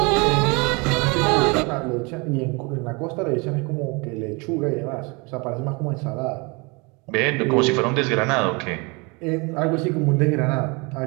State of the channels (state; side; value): quieter; left; 28.7 dB